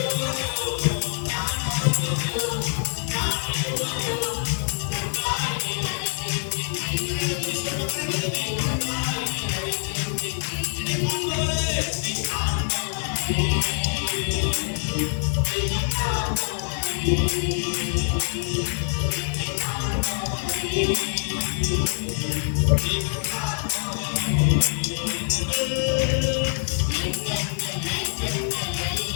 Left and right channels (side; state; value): right; silent; 59 dB below the other